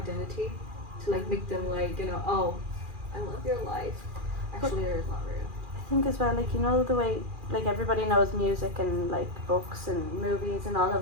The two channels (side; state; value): left; late; 2.4 ms